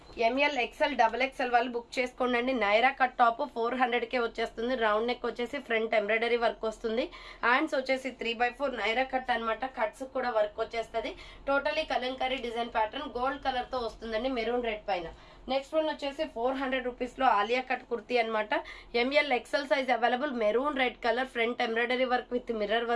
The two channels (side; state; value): both; identical; correlation 1.00